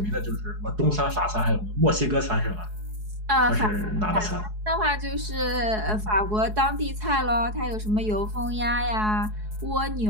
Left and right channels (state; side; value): late; left; 4.7 ms